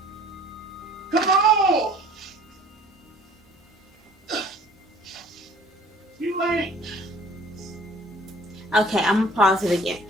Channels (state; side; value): normal; both; correlation 0.51